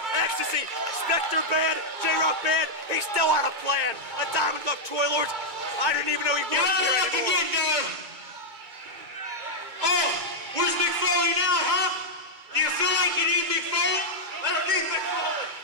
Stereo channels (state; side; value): late; left; 2.2 ms